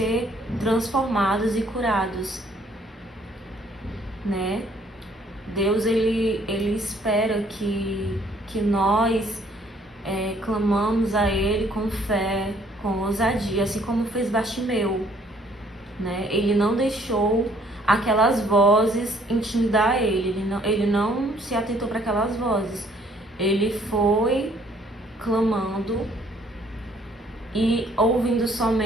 transformados e curados, né? Deus, ele espera que nós clamamos a Ele com fé, com ousadia, assim como fez Bartimeu, né? Ele não deixou aquelas vozes intimidar ele não se atentou para aquelas vozes. Ele foi clamando e ouvindo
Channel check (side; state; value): both; normal; correlation 0.62